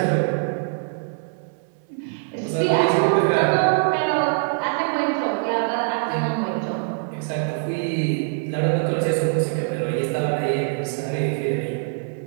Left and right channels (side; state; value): left; silent; 63 dB below the other